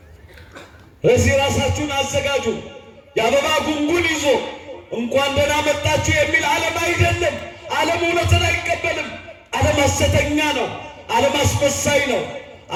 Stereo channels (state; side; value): identical; both; correlation 1.00